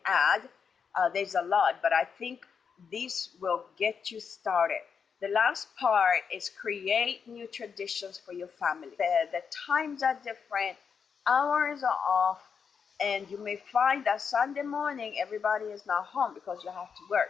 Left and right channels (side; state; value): right; quieter; 6.4 dB